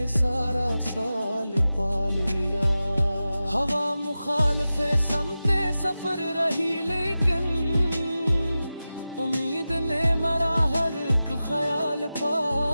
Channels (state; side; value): inverted; both; correlation -0.94